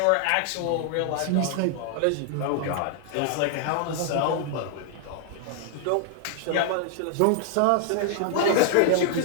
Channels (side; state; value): both; different; correlation 0.00